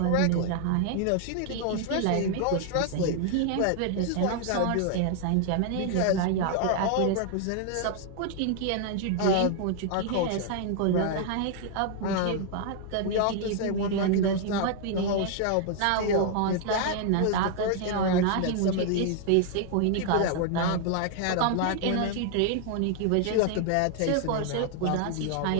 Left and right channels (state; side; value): different; both; correlation -0.01